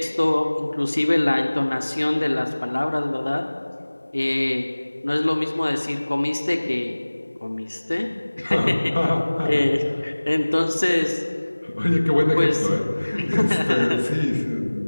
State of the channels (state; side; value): inverted; both; correlation -1.00